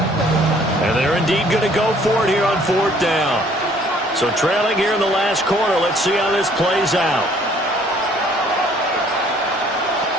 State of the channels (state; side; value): normal; both; correlation 0.59